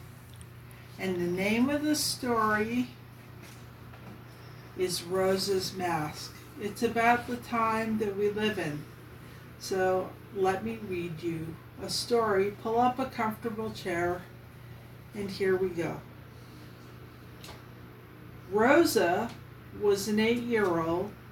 and the name of the story is Rosa's Mask. It's about the time that we live in. So let me read you a story. Pull up a comfortable chair, and here we go. Rosa was an 8-year-old.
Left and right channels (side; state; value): both; identical; correlation 1.00